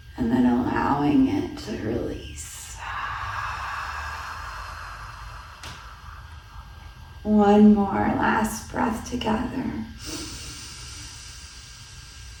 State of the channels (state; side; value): identical; both; correlation 1.00